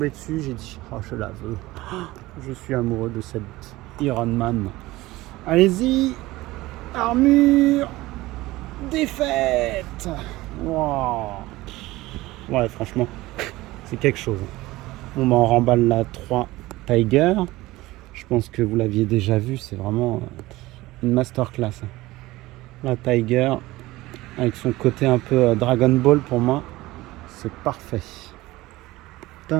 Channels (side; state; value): left; quieter; 18.7 dB